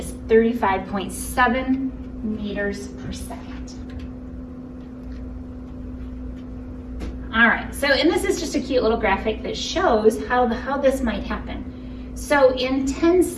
35.7 meters per second. All right, so, and this is just a cute little graphic that shows how this might happen. So in 10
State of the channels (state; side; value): identical; both; correlation 1.00